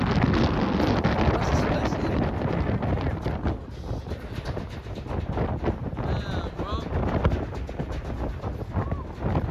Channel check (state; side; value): identical; both; correlation 1.00